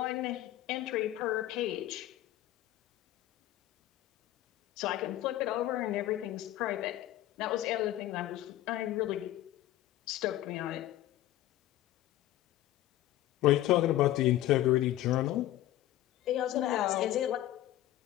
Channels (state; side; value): quieter; right; 14.4 dB